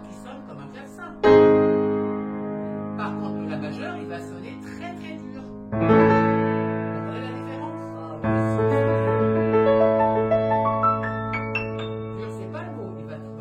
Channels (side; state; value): both; identical; correlation 1.00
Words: qui sonne comme un clavecin. Par contre, la majeure, il va sonner très très dur. Vous comprenez la différence? Ah oui, Dur, c'est pas le mot. Il va